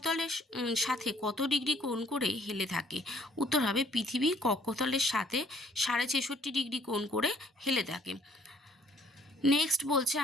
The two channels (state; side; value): normal; both; correlation 0.61